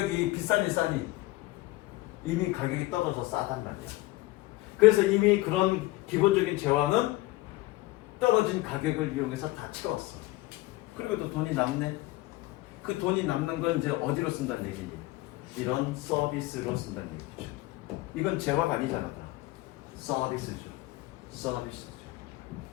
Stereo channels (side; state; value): right; quieter; 19.3 dB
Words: 비싼지 싸니 이미 가격이 떨어져 싸단 말이야. 그래서 이미 그런 기본적인 재화는 떨어진 가격을 이용해서 다 채웠어. 그리고 또 돈이 남네. 그 돈이 남는 건 이제 어디로 쓴다는 얘기니? 이런 서비스로 쓴다는 얘기죠. 이건 재화가 아니잖아. 다. 서비스죠.